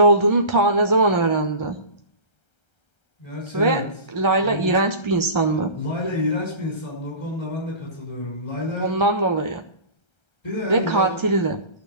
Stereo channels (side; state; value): right; late; 1.3 ms